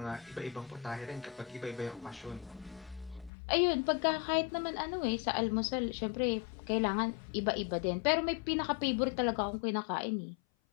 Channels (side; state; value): right; drops out; at 3.3 s